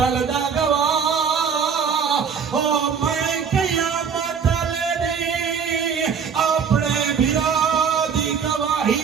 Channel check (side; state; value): left; quieter; 6.6 dB